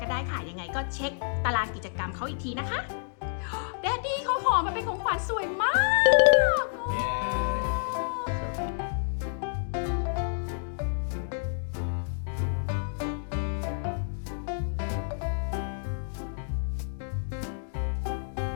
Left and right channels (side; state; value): right; silent; digital silence